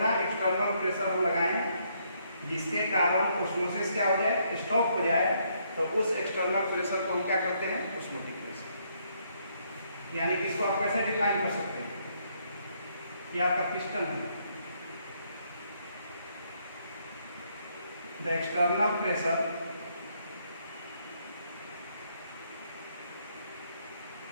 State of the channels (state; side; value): inverted; both; correlation -0.72